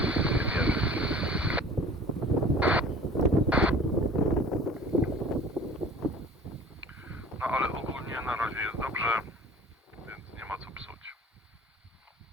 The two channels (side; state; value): both; normal; correlation 0.46